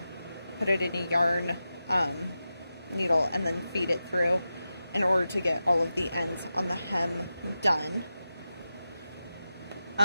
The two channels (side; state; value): both; inverted; correlation -0.92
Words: put it in a yarn needle, and then feed it through in order to get all of the ends on the hem done.